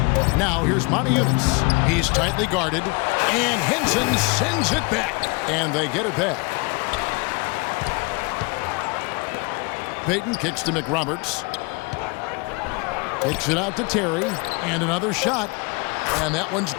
Now here's Montejunas. He's tightly guarded. And Henson sends it back. And they get it back. Payton kicks to McRoberts. Kicks it out to Terry. And another shot. And that one's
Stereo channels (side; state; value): right; quieter; 29.5 dB